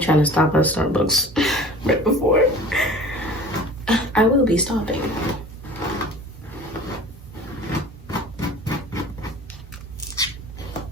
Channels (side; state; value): both; normal; correlation 0.42